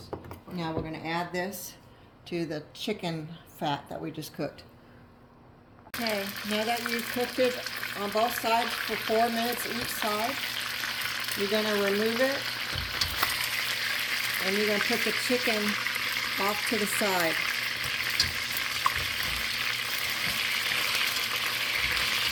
Now we're going to add this to the chicken fat that we just cooked. Okay, now that you've cooked it on both sides for 4 minutes each side, you're going to remove it and you're going to put the chicken off to the side.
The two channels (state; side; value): identical; both; correlation 1.00